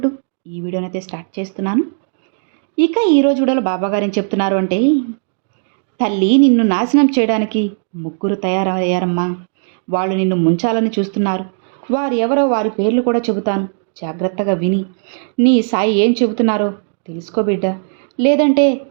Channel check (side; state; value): left; silent; digital silence